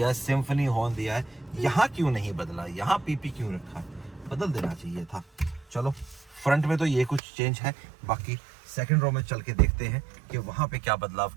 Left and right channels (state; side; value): drops out; left; at 7.2 s